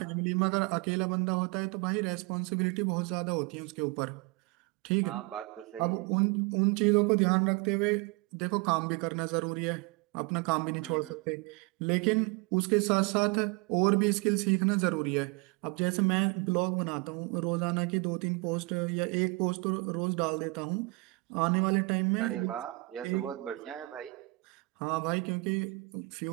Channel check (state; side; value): quieter; left; 25.6 dB